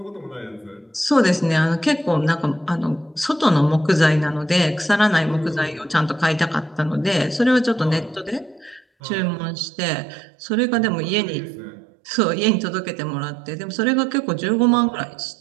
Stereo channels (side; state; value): left; drops out; at 8.8 s